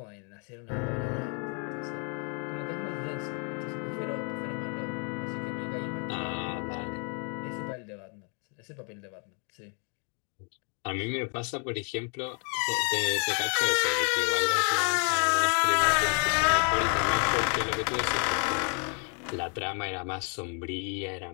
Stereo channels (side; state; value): right; quieter; 38.7 dB